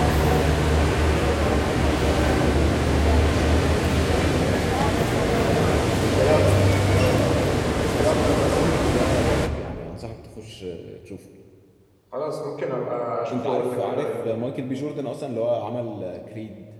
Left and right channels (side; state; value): both; identical; correlation 1.00